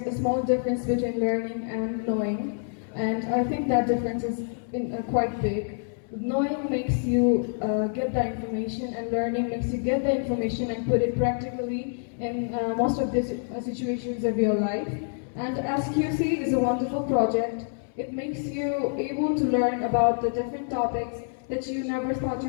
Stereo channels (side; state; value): right; silent; 60 dB below the other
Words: a small difference between learning and knowing, and I think that difference is quite big. Knowing makes you get the information, and learning makes you get the information and put it practically in most of the situations of your life. And SQC is a wonderful project. It makes you able to learn about the different topics that you never thought